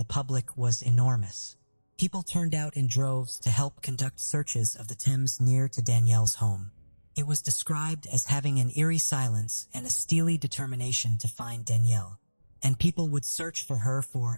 public was enormous. People turned out in droves to help conduct searches of the Thames near to Danielle's home. It was described as having an eerie silence and a steely determination to find Danielle, and people would search for her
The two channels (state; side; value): inverted; both; correlation -1.00